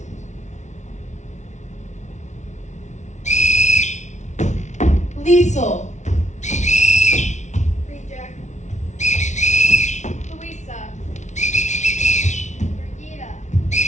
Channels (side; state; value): right; late; 0.34 ms